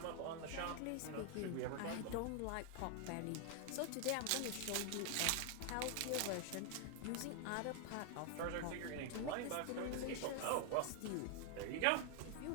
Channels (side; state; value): both; different; correlation 0.00